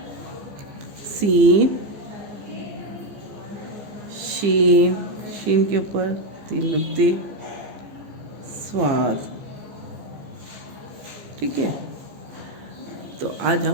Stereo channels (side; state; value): left; late; 14 ms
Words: सीन शीन के ऊपर 3 नुक्ते, स्वाद। ठीक है, तो आज